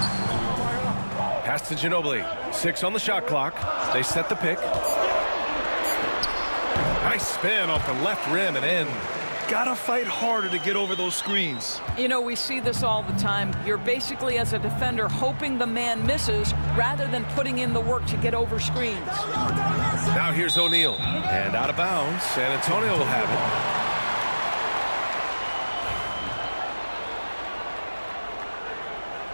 Pass to Ginobili. 6 on the shot clock. They set the pick. Nice spin off the left rim and in. Gotta fight harder to get over those screens. You know, we see this all the time. You're basically, as a defender, hoping the man misses rather than putting in the work to get over screens. Now here's O'Neal. And out of bounds. San Antonio will have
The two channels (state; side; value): inverted; both; correlation -1.00